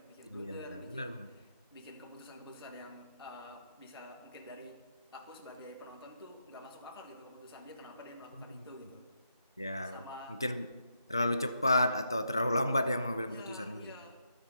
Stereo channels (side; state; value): both; inverted; correlation -0.80